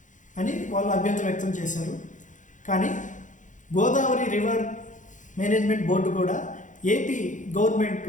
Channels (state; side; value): late; right; 0.37 ms